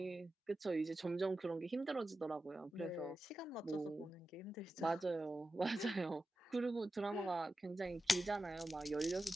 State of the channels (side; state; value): both; normal; correlation 0.92